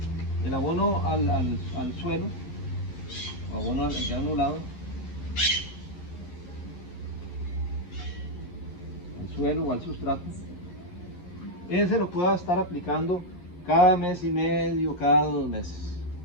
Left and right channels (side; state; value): right; late; 11 ms